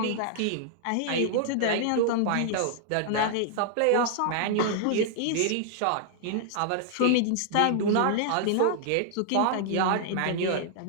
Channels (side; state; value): both; different; correlation -0.01